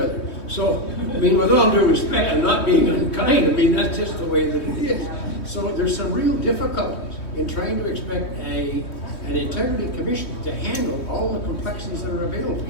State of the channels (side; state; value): right; late; 3.2 ms